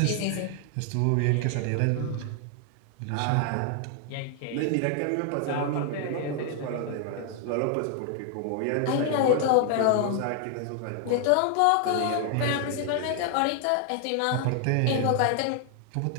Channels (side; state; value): both; different; correlation 0.00